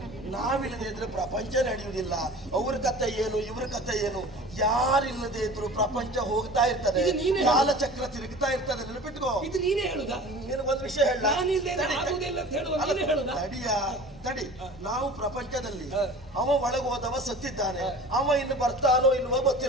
ನಾವಿಲ್ಲದೆ ಇದ್ರೆ ಪ್ರಪಂಚ ನಡೆಯುವುದಿಲ್ಲ. ಅವ್ರ ಕಥೆ ಏನು, ಇವ್ರ ಕಥೆ ಏನು, ಯಾರಿಲ್ಲದೆ ಇದ್ರು ಪ್ರಪಂಚ ಹೋಗ್ತಾ ಇರ್ತದೆ, ಇದು ನೀನೇ ಕಾಲಚಕ್ರ ತಿರುಗ್ತಾ ಇರ್ತದೆ. ನೆನಪಿಟ್ಕೋ. ಇದು ನೀನೇ ಹೇಳುದಾ? ನಿನಗೊಂದು ವಿಷಯ ಹೇಳ. ಆಗುವುದಿಲ್ಲ ಅಂತ ಹೇಳುವ ನೀನೇ ಹೇಳುದಾ? ತಡಿ, ನಾವು ಪ್ರಪಂಚದಲ್ಲಿ ಅವ ಒಳಗೆ ಹೋದವ ಸತ್ತಿದ್ದಾನೆ, ಅವ ಇನ್ನು ಬರ್ತಾನೋ ಇಲ್ವೋ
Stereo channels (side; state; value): both; normal; correlation 0.40